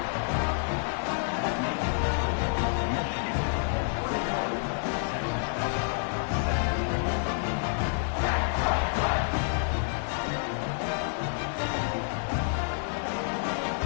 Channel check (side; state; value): right; silent; 59 dB below the other